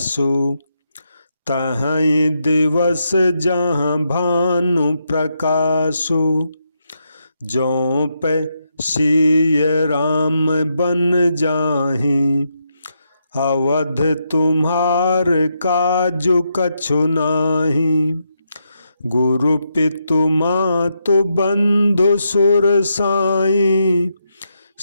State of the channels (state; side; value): inverted; both; correlation -0.82